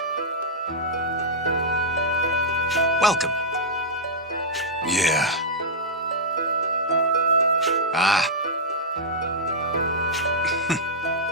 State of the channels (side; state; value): both; normal; correlation -0.08